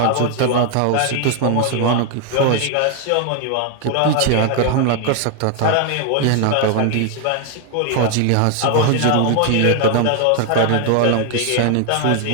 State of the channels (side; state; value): both; different; correlation 0.00